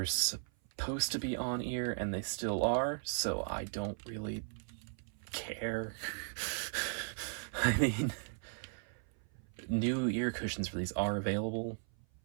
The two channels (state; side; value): silent; left; 53 dB below the other